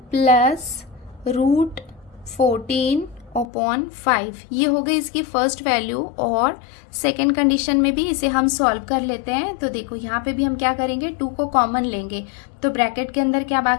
+ √14 अपॉन 5, ये हो गई इसकी फर्स्ट वैल्यू। और सेकेंड कंडीशन में भी इसे हम सॉल्व कर लेते हैं। तो देखो यहाँ पे भी हम क्या करेंगे, 2 को कॉमन लेंगे, तो ब्रैकेट के अंदर क्या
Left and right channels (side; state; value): right; drops out; at 3.5 s